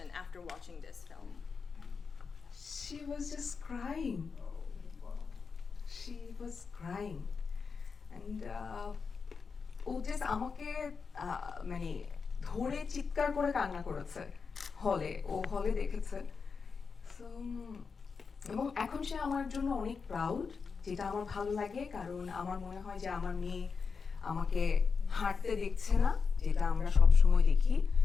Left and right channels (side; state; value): right; quieter; 5.3 dB